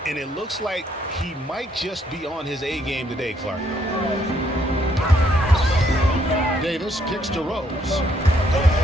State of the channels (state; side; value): normal; both; correlation 0.70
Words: And it looks like he might just be on his A game today, Clark. Davis kicks to Rose.